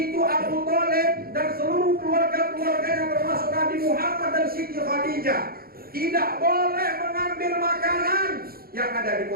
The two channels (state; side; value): late; left; 0.44 ms